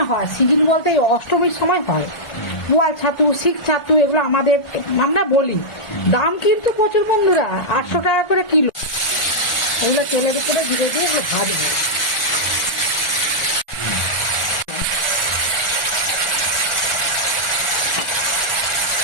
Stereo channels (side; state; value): right; late; 1.3 ms